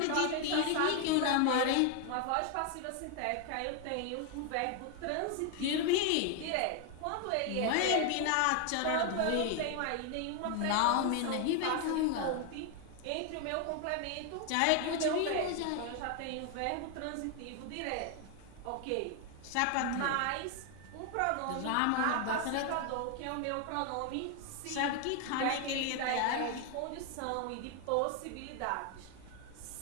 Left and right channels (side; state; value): both; different; correlation 0.01